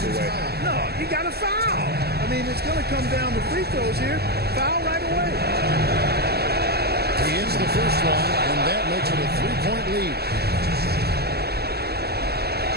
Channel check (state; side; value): late; left; 0.46 ms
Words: away. No, you got to foul. I mean, it's going to come down to free throws here. Foul right away. He hits the first one, and that makes it a 3-point lead.